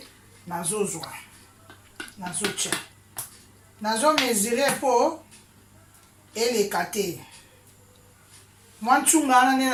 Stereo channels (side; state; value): both; identical; correlation 1.00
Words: nazozwa. Nazotia. Nazo mesurer po eleka te. Mwa ntsunga wana nde